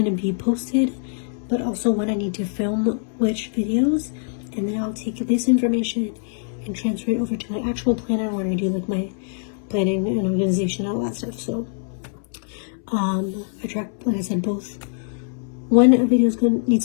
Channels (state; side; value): silent; right; 63 dB below the other